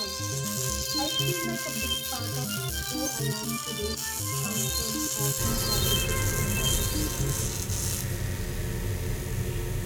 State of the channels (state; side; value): identical; both; correlation 1.00